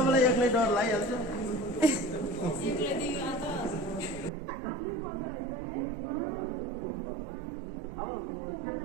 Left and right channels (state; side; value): drops out; left; at 4.3 s